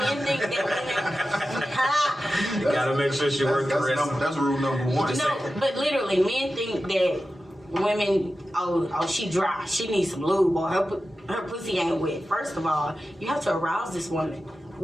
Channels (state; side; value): normal; both; correlation 0.93